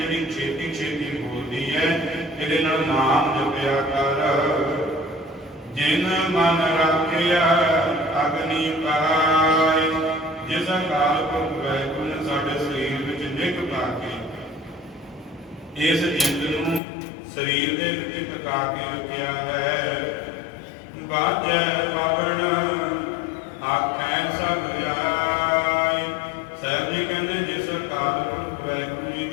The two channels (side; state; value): right; drops out; at 16.8 s